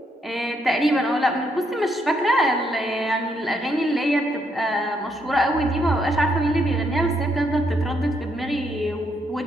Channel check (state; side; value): normal; both; correlation 0.75